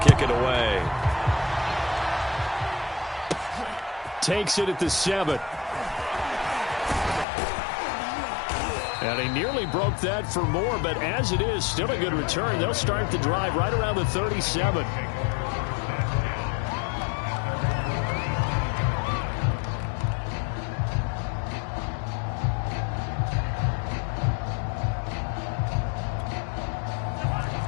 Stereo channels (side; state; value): right; drops out; at 7.2 s